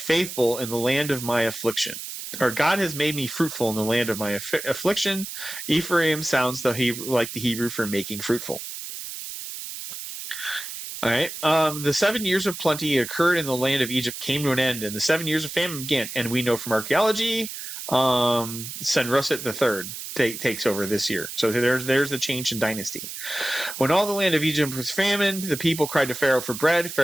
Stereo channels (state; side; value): noise; right; hiss, 9 dB below the sound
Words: in the land of my affliction. Or God has made me fruitful in the land of my affliction. Ephraim sounds like the Hebrew for making fruitful. All right. The 7 years of plenty occurred in the land of Egypt came to an end, and the 7 years of famine began. And we know from archaeology, Senroset III takes over this year. So there's the change in dynasty. When all the land of Egypt was famine, the people cried to Pharaoh for bread.